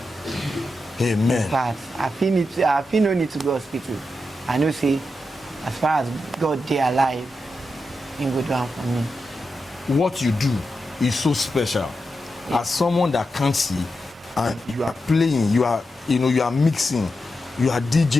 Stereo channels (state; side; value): normal; both; correlation 0.88